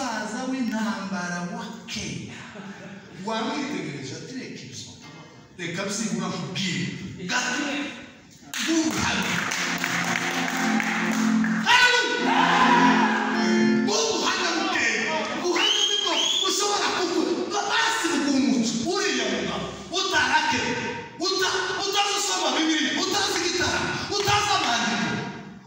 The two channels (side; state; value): both; identical; correlation 1.00